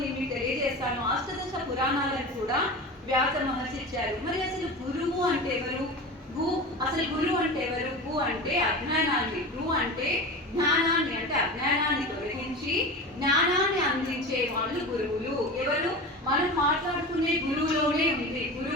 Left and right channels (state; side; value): normal; both; correlation 0.30